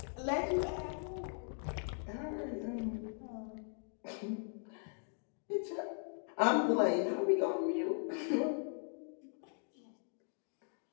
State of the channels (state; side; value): silent; right; 52 dB below the other